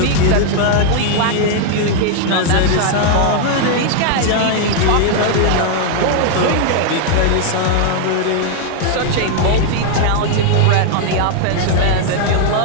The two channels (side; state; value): both; different; correlation 0.00